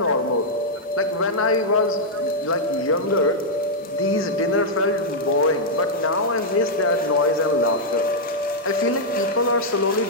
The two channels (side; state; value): both; normal; correlation -0.05